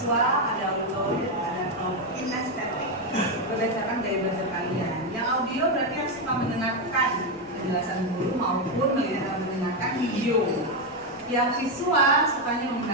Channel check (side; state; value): right; noise; rumble, 28 dB below the sound